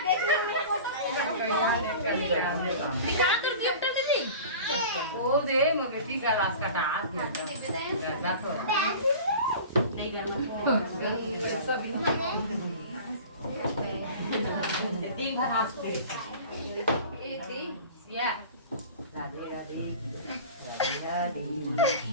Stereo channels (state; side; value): inverted; both; correlation -0.39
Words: दिखा तो गिफ्ट दीदी ओ दे मगे टी का रास का हाथ गया तो नहीं करना सब तीन बार हाथ पे ये थी या राधे राधे राधे